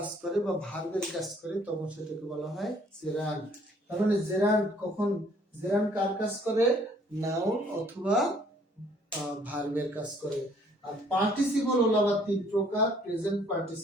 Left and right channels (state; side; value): normal; both; correlation 0.61